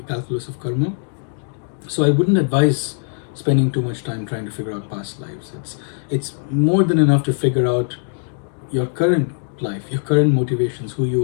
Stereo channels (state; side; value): silent; right; digital silence